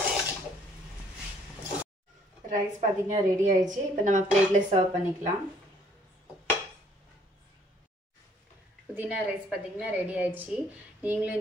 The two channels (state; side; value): normal; both; correlation 0.62